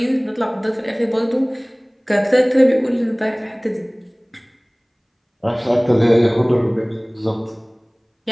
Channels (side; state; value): both; identical; correlation 1.00